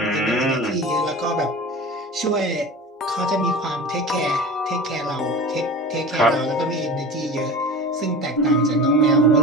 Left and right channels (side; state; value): both; normal; correlation 0.34